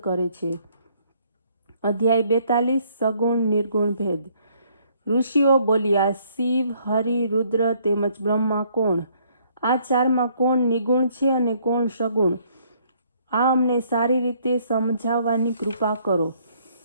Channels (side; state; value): both; inverted; correlation -0.65